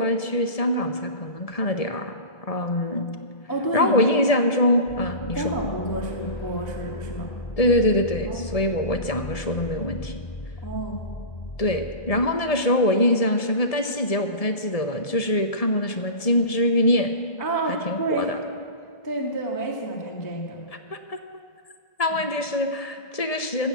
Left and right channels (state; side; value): late; right; 1.7 ms